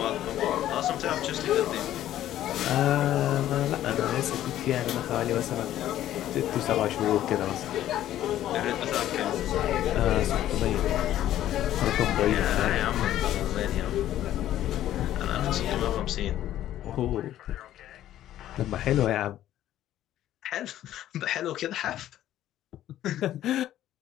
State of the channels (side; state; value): right; quieter; 12.7 dB